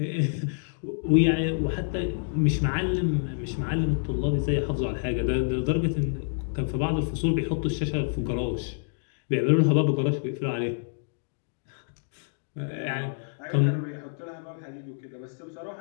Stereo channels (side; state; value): right; silent; digital silence